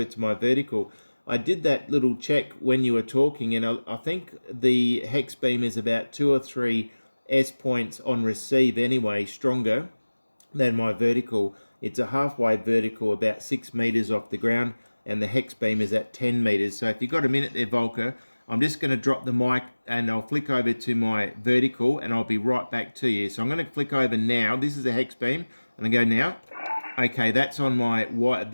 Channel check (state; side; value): inverted; both; correlation -1.00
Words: to my vertical. I did that little check when you were talking, and I think the Hexbeam is about 2 or 3 S points on receive anyway, stronger than my vertical. It's a halfway vertical, about 6 meters off the ground, and the Hexbeam is at 10 meters. So if you've got a minute there, Volker, I'm just going to drop the mic and I'll flick over to my vertical and I'll be right back to you. So I'm going to flick over now. This is a Hexbeam, and I go now. Okay, that's on